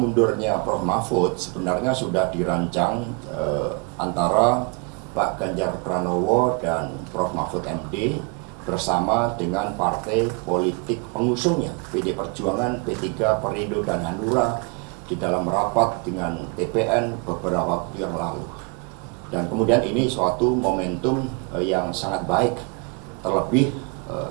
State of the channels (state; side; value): quieter; left; 34.0 dB